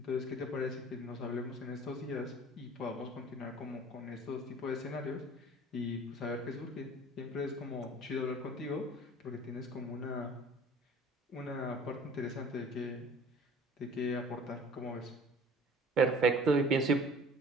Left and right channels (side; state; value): both; normal; correlation 0.47